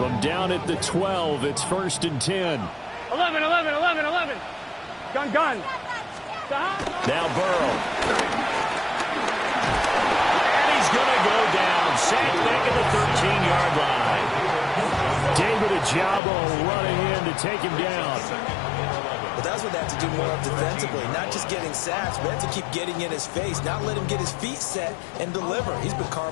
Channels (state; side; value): drops out; right; at 16.2 s